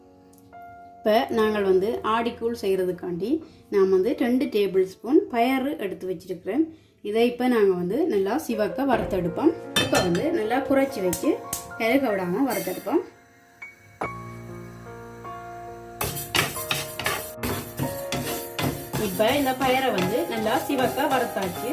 இப்போ நாங்கள் ஆடிக்கூழ் செய்கிறதுக்காண்டி நான் 2 டேபிள் ஸ்பூன் பயறு எடுத்து வச்சிருக்கிறேன். இதை இப்போ நாங்கள் நல்லா சிவக்க வறுத்தெடுப்போம். இப்போ நல்லா குறைச்சி வச்சு கருக விடாமல் வறுத்தெடுப்போம். இப்போ இந்த பயரை நல்லா சிவக்க வறுத்தாச்சு.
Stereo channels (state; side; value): identical; both; correlation 1.00